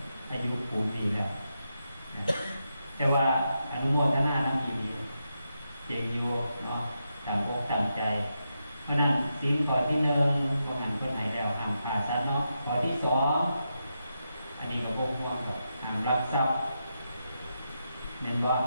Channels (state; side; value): inverted; both; correlation -0.86